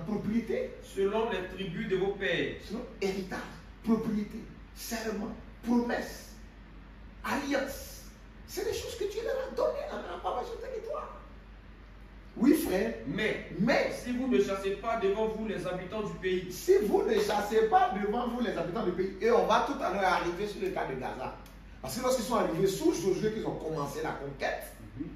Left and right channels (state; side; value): identical; both; correlation 1.00